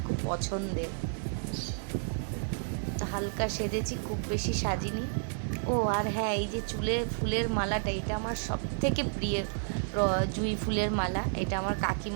খুব পছন্দের। তো হালকা সেজেছি, খুব বেশি সাজিনি। ও আর হ্যাঁ, এই যে চুলে ফুলের মালাটা, এটা আমার সব থেকে প্রিয় জুঁই ফুলের মালা, এটা আমার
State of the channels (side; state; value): left; silent; digital silence